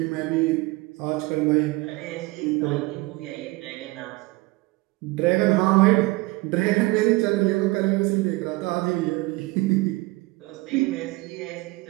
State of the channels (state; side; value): quieter; left; 22.1 dB